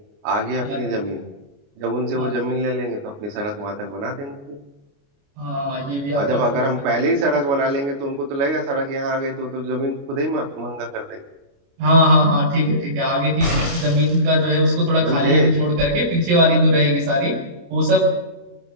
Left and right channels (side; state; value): left; late; 29 ms